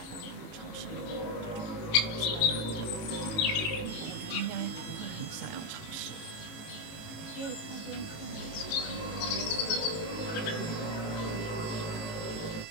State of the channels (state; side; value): late; right; 18 ms